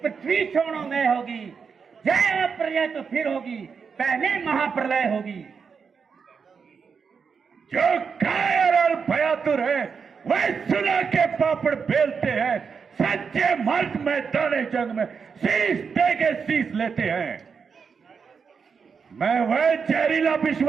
छोड़ो में होगी, जय प्रलय तो फिर होगी, पहले महाप्रलय होगी। जो कायर और भयातुर है वह सुना के पापड़ बेलते हैं, सच्चे मर्द मैदाने जंग में शीश दे के शीश लेते हैं। मैं वह जहरीला विष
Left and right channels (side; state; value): left; quieter; 5.9 dB